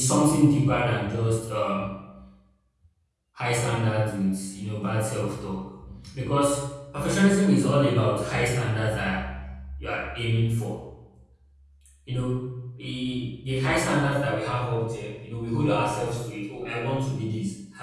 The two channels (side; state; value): both; identical; correlation 1.00